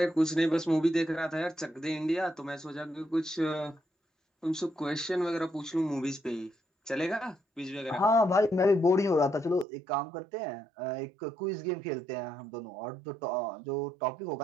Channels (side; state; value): left; drops out; at 9.7 s